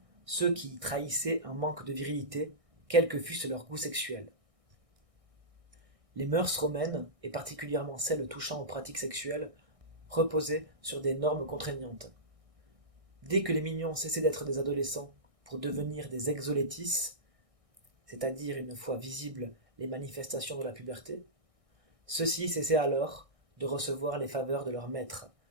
ceux qui trahissaient un manque de virilité, quel que fût leur goût sexuel. Les mœurs romaines, et particulièrement celles touchant aux pratiques sexuelles, reposaient sur des normes contraignantes. Dès que les mignons cessaient d'être des adolescents pour devenir des exolétis, c'est-à-dire une fois visibles les manifestations de la puberté, ceux-ci cessaient alors de recevoir les faveurs de leur maître,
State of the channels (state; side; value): late; left; 1.6 ms